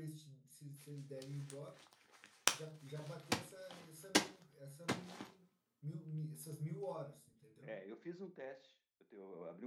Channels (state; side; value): identical; both; correlation 1.00